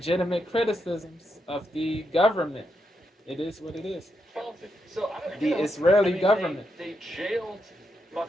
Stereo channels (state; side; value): normal; both; correlation 0.82